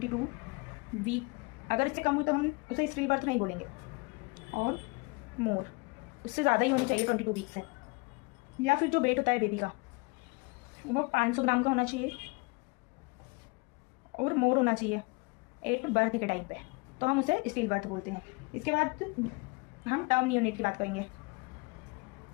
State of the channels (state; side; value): quieter; right; 28.3 dB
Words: वीक। अगर इससे कम हो तो हम उसे स्टील बर्थ नहीं बोलेंगे, और मोर उससे ज़्यादा ही होनी चाहिए 22 वीक से, या फिर जो वेट होता है बेबी का वो 500 ग्राम का होना चाहिए और मोर होना चाहिए एट बर्थ के टाइम पे, तो हम उसे स्टील बर्थ बोलते हैं। इसके बाद हम टर्म नियोनेट की बात करेंगे।